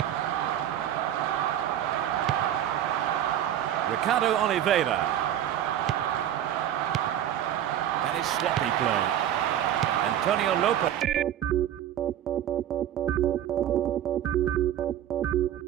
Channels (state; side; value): quieter; left; 11.1 dB